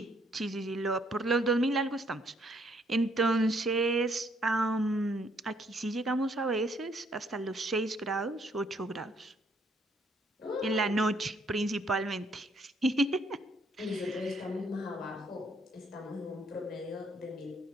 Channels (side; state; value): both; normal; correlation 0.68